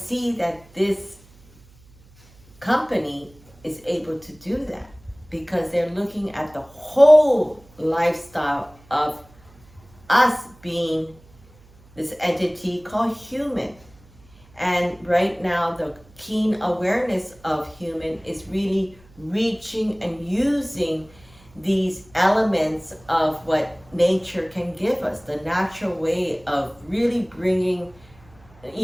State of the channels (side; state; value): right; noise; hum, 27 dB below the sound